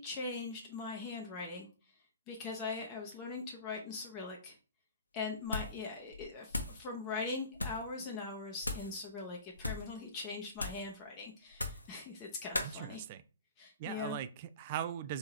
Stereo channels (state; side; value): inverted; both; correlation -0.38